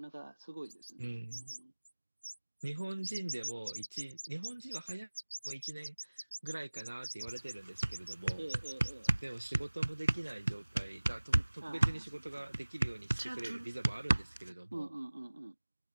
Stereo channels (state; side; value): inverted; both; correlation -1.00